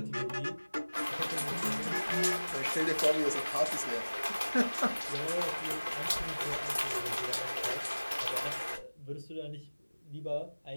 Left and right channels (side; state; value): both; inverted; correlation -1.00